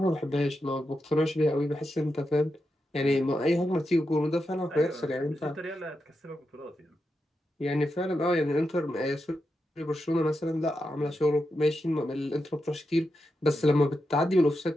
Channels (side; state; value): both; normal; correlation 0.87